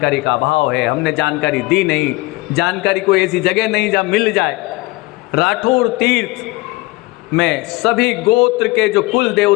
का अभाव है। हमने जानकारी दी नहीं, जानकारी कोई ऐसी जगह नहीं जहाँ मिल जाए। राठौर तीर्थ में सभी गोत्र के जो कुल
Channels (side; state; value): right; quieter; 21.8 dB